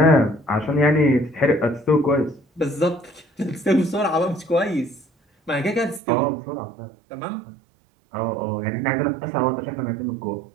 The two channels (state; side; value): drops out; left; at 6.0 s